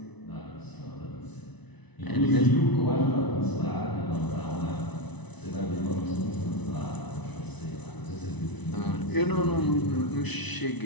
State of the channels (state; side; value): late; right; 1.0 ms